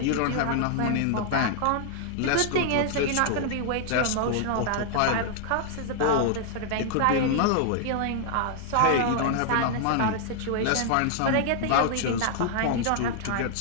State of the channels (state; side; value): different; both; correlation -0.01